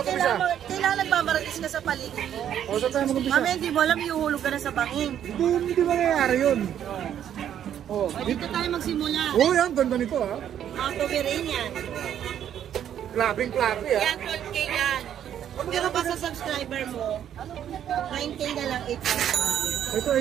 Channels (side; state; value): left; quieter; 10.0 dB